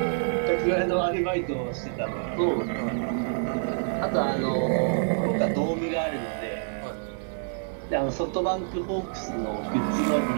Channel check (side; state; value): left; silent; digital silence